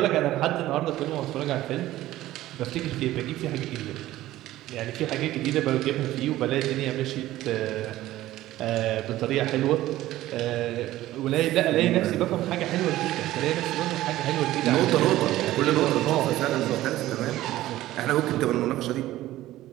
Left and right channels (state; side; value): quieter; left; 15.3 dB